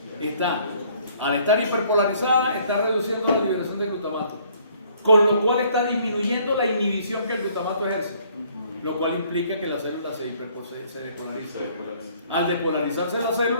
Al estar hiperpolarizada, está reduciendo la liberación de glutamato, con lo cual está disminuyendo la inhibición que el glutamato ejerce, lo cual implica que la célula se despolariza. Al despolarizarse la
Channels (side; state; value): both; inverted; correlation -0.61